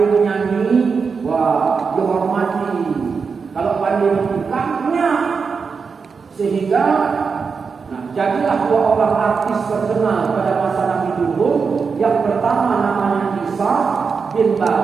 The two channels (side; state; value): left; quieter; 5.4 dB